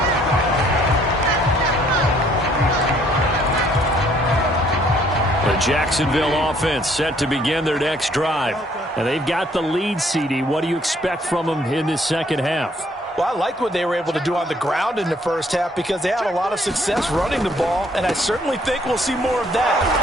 30. The Jacksonville offense set to begin their next drive. And they've got the lead, CD. What do you expect from them in this second half? Well, I liked what they were able to do on the ground in the first half because they had a lot of success running the ball, and I certainly think we'll see more of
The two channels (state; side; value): normal; both; correlation 0.63